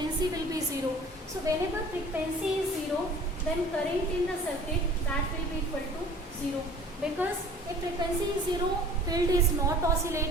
will be 0. So whenever frequency is 0, then current in the circuit, that will be equal to 0. Because if frequency is 0, field is not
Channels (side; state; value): both; normal; correlation 0.47